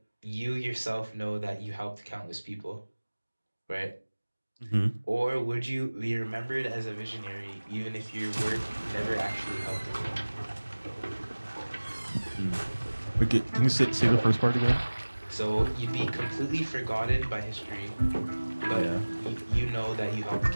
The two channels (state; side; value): inverted; both; correlation -1.00